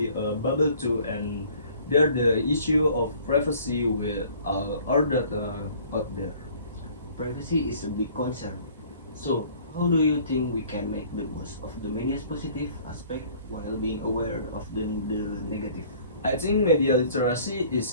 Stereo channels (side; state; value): both; inverted; correlation -0.53